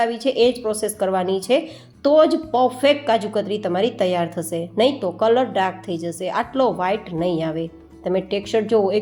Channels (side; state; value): both; identical; correlation 1.00